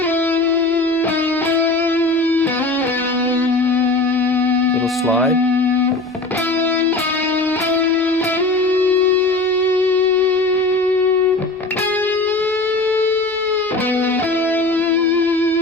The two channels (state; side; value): quieter; right; 3.0 dB